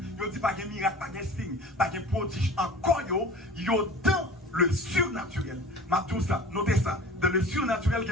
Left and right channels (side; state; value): both; normal; correlation 0.41